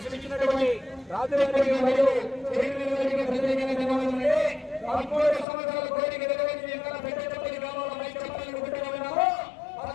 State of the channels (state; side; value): drops out; right; at 5.5 s